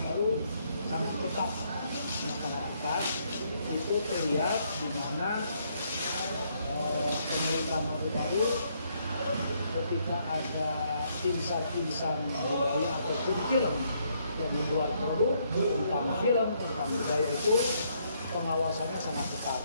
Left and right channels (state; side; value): inverted; both; correlation -0.72